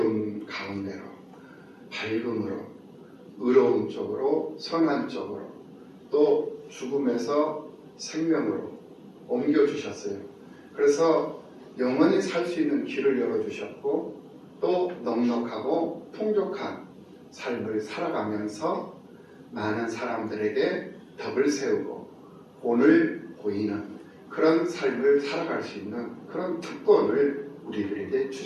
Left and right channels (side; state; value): both; identical; correlation 1.00